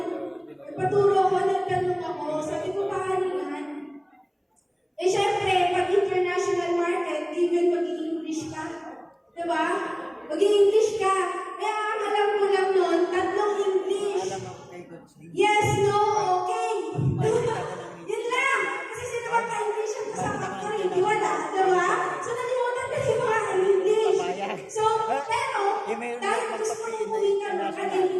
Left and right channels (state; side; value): identical; both; correlation 1.00